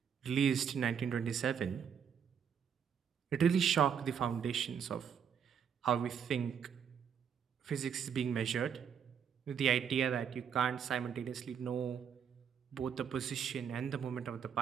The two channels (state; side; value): quieter; left; 7.7 dB